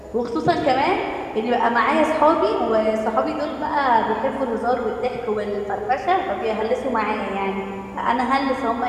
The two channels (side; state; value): both; identical; correlation 1.00